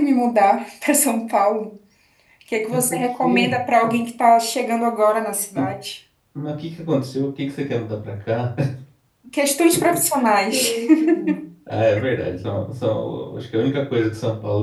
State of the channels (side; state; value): both; identical; correlation 1.00